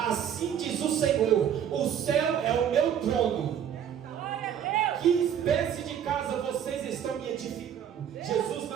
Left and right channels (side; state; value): left; quieter; 9.1 dB